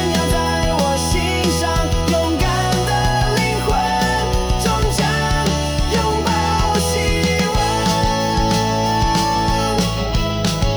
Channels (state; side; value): identical; both; correlation 1.00